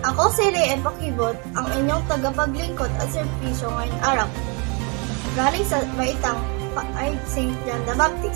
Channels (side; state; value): left; quieter; 33.2 dB